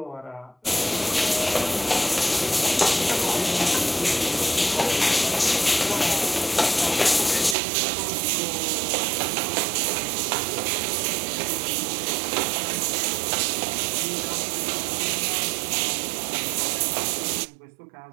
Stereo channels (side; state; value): left; drops out; at 7.6 s